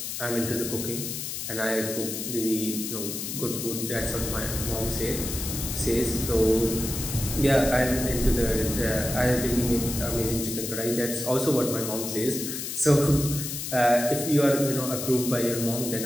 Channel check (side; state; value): left; noise; hiss, 5 dB below the sound